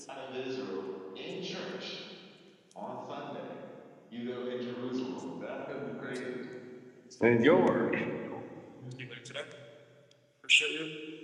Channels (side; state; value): both; identical; correlation 1.00